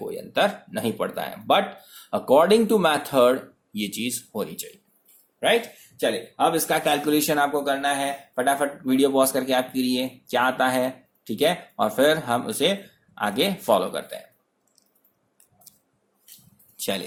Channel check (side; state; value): both; identical; correlation 1.00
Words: अंतर नहीं पड़ता है, बट अकॉर्डिंग टू मैथड ये चीज होनी चाहिए, राइट। चलिए, अब इसका कैलकुलेशन आपको करना है। फटाफट वीडियो पॉज करके आप करिए क्या आता है, ठीक है, और फिर हम उसे आगे फॉलो करते हैं।